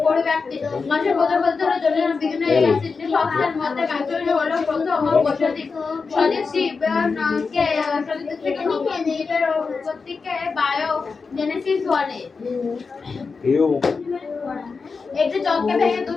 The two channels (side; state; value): right; quieter; 4.8 dB